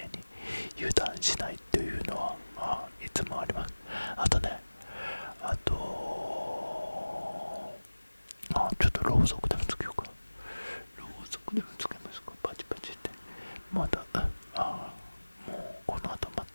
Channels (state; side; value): inverted; both; correlation -1.00